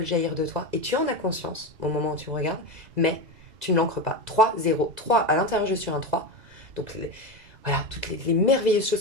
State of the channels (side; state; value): left; late; 2.0 ms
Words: jaillir de toi et tu en as conscience au moment où tu me regardes, mais tu ne l'ancres pas. 3, 0. 3, à l'intérieur, je suis un 3. Donc, voilà, toutes les merveilleuses